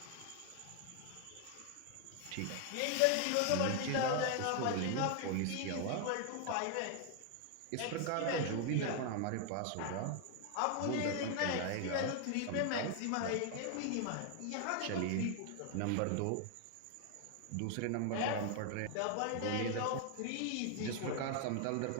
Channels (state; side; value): different; both; correlation 0.00